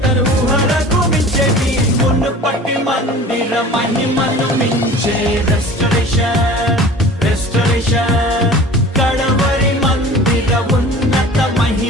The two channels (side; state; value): both; normal; correlation 0.42